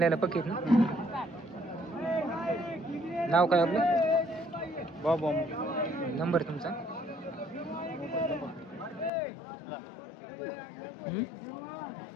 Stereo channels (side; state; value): right; drops out; at 9.1 s